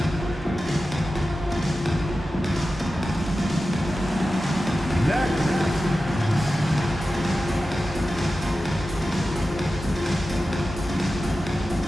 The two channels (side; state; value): both; normal; correlation 0.93